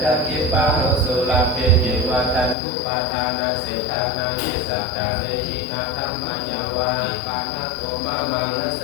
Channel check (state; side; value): drops out; right; at 2.6 s